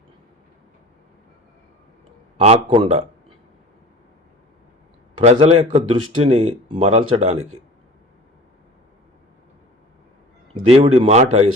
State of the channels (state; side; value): normal; both; correlation 0.41